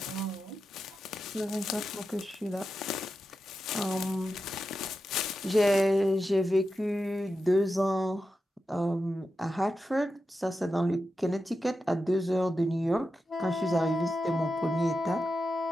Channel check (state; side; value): normal; both; correlation 0.90